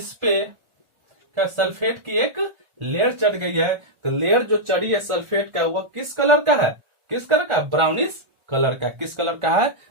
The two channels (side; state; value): left; late; 1.4 ms